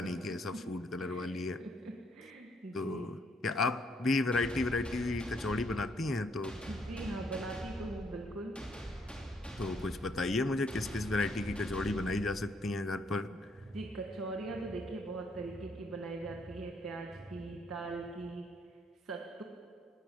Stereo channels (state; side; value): normal; both; correlation 0.70